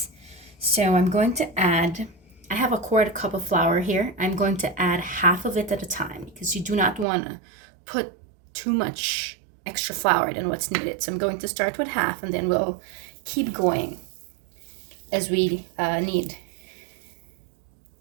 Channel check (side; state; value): left; drops out; at 7.1 s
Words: So I'm going to add, I have a 1/4 cup of flour here. I'm going to add half of it at a time because you do not want to put too much extra flour than what's needed. So I'm going to start with half, and then we'll keep going as we knead